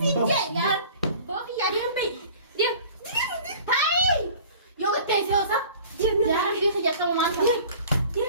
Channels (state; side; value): inverted; both; correlation -0.46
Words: sinja yar. Boki yar yan bay. Diam. Hai. Yoga tese osa. Yar dia kerja kamu mantap.